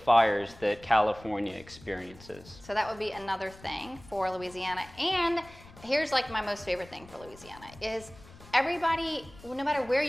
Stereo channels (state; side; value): noise; left; rumble, 21 dB below the sound